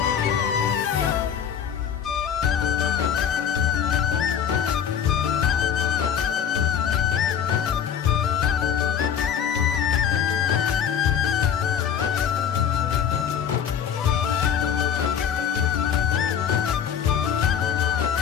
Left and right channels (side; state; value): right; quieter; 8.5 dB